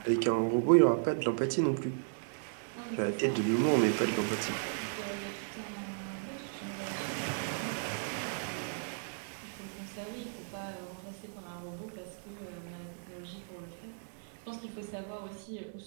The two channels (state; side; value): silent; left; 54 dB below the other